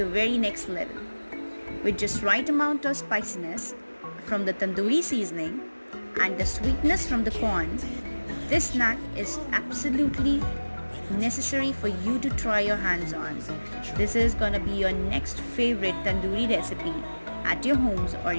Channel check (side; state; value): both; inverted; correlation -1.00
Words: very next level. With just right amount of spiciness from the tandoori seasoning and the sweetness from the corn, this snack is absolutely necessary for you to try your hands on. This is gonna be your next favorite tandoori recipe at your homes or